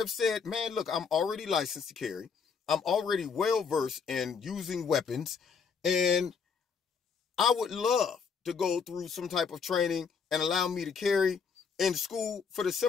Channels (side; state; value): right; quieter; 5.9 dB